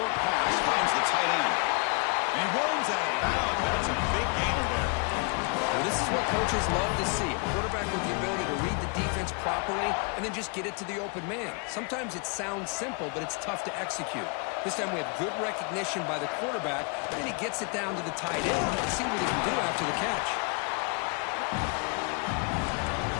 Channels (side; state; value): right; quieter; 35.2 dB